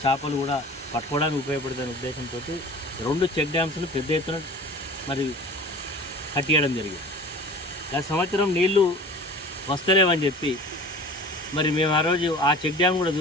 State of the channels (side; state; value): both; normal; correlation 0.41